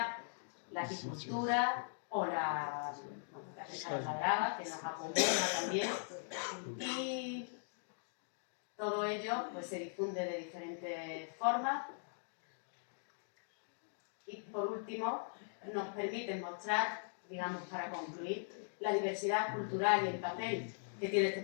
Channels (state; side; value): silent; right; digital silence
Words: la apicultura o la pesca de la brava, que nos acumula también, y todo ello pues, se difunde de diferentes formas. Y por último, nos permite mostrar, digamos, para concluir, la diversidad cultural y el papel que tiene este